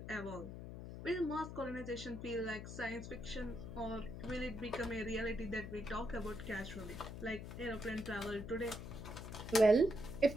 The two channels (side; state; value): left; noise; hum, 9 dB below the sound